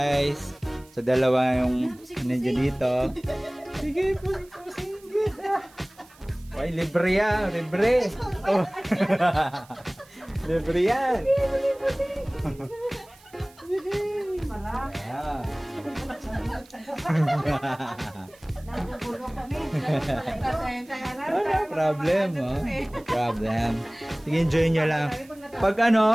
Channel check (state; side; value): noise; right; hiss, 27 dB below the sound